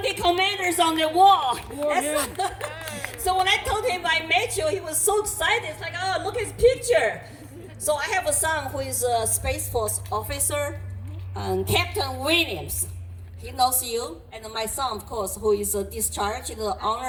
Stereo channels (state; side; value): identical; both; correlation 1.00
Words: commanders on the wall. So when I told him I met you, he was so excited. It's like, "Oh, look at his picture." So I have a son who is a Space Force officer, Captain Williams. He knows you. And my son, of course, who is discharged